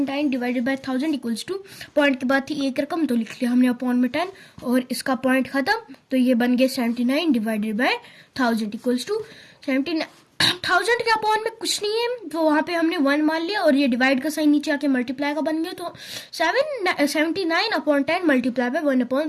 divided by 1000 equals to, point के बाद थी एक रकम, तो लिख लिया हमने अपॉन में 10, और इसका पॉइंट खत्म, तो ये बन गया 79 डिवाइडेड बाय 1000 इक्वल्स टू 79। 1000 के अपॉन में कुछ नहीं है, तो वहां पे हमने 1 मान लिया, और ये डिवाइड का साइन नीचे आके मल्टीप्लाई का बन गया, तो 79 अपॉन 10 मल्टीप्लाई बाय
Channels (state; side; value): identical; both; correlation 1.00